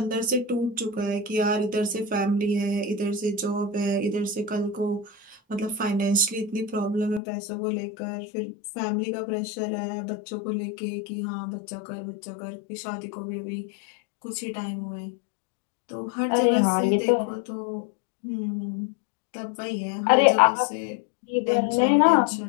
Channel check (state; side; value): drops out; right; at 7.2 s